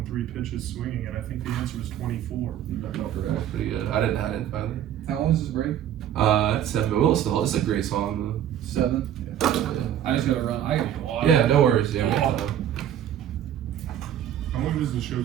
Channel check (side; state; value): left; quieter; 10.6 dB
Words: 3 pitches swinging, and I think the answer was 24. That's pretty good. I didn't find it. How long is this break? It's 7, but we'll still. It's a great song 7. though. I just gotta run. I gotta go on. Yeah, no worries. Yeah, we got time. How long does the show